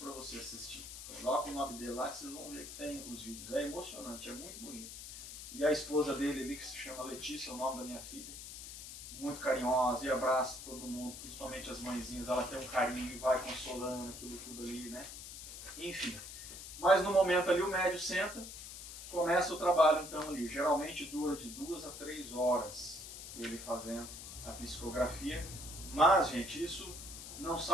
para você assistir. Coloca o nome dele lá que vocês vão ver que tem os vídeos. É emocionante, é muito bonito. E a esposa dele ali, que se chama Letícia, é o nome da minha filha, muito carinhosa e abraça todo mundo, principalmente as mãezinhas. Ela tem um carinho e vai consolando aquilo tudo ali, né? Enfim. Mas no momento ali o médium senta, começa o trabalho então ali. Geralmente dura de 2 a 3 horas ele fazendo a psicografia. Mas, gente, isso não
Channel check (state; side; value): noise; left; hiss, 11 dB below the sound